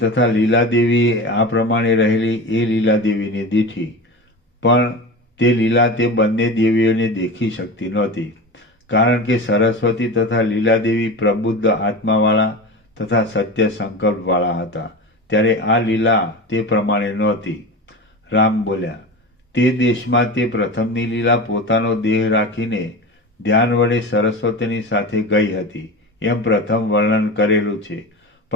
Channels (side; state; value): both; normal; correlation 0.28